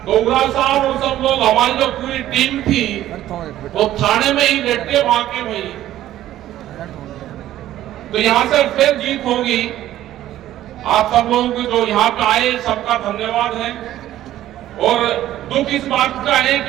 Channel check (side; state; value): left; quieter; 13.3 dB